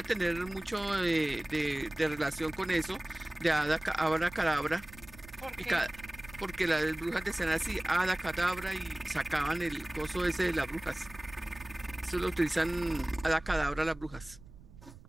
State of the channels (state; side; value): noise; right; rumble, 19 dB below the sound